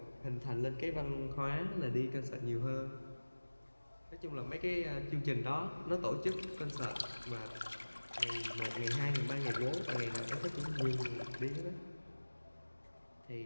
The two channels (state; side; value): inverted; both; correlation -1.00